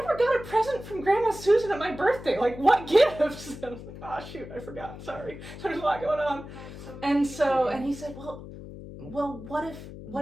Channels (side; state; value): left; noise; hum, 13 dB below the sound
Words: never got a present from Grandma Susan at my birthday. Like, what gifts? And I was like, oh, shoot, I forgot. Sorry. There's a lot going on. And he said, well, what if